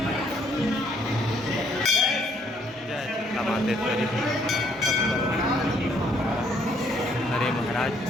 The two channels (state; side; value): normal; both; correlation 0.67